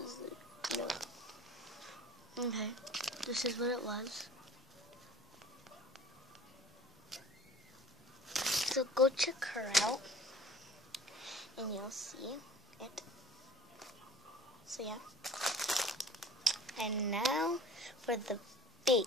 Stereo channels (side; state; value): both; normal; correlation 0.46